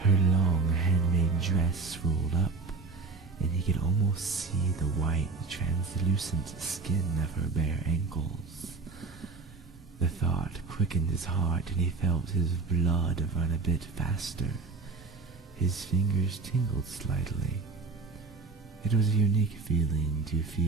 long handmade dress rolled up, and he could almost see the white, translucent skin of her bare ankles. The thought quickened his heart, and he felt his blood run a bit faster. His fingers tingled slightly. It was a unique feeling to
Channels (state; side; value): quieter; left; 4.1 dB